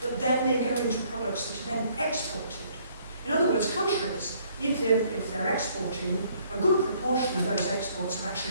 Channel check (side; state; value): both; inverted; correlation -0.63